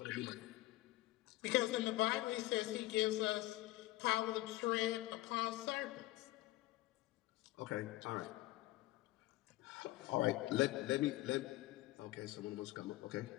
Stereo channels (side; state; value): right; quieter; 18.2 dB